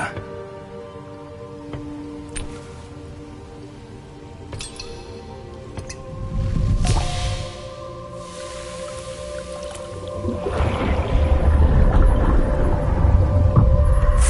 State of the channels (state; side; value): identical; both; correlation 1.00